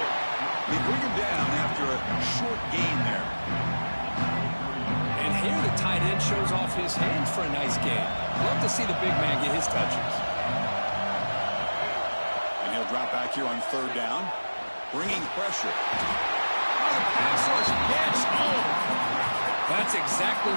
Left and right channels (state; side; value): inverted; both; correlation -1.00